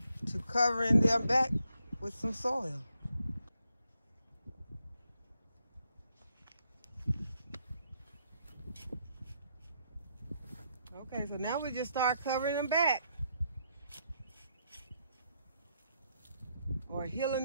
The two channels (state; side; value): inverted; both; correlation -0.77